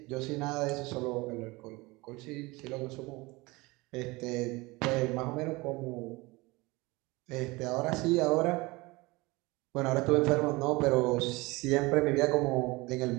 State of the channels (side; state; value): left; quieter; 23.1 dB